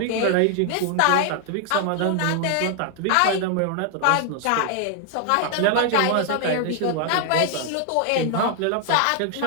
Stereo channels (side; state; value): both; different; correlation 0.00